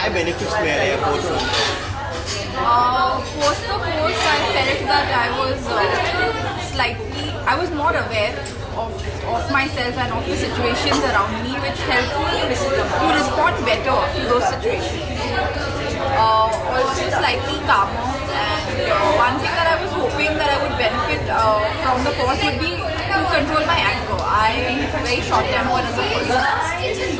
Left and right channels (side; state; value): both; identical; correlation 1.00